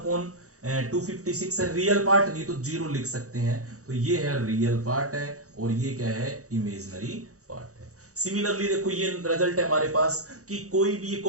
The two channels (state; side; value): late; left; 0.65 ms